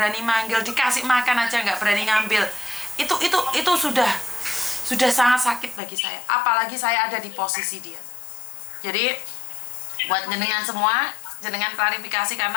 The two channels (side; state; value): right; drops out; at 5.8 s